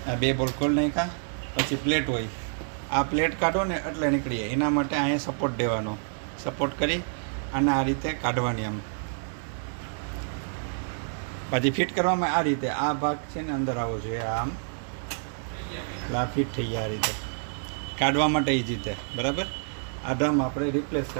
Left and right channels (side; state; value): left; silent; digital silence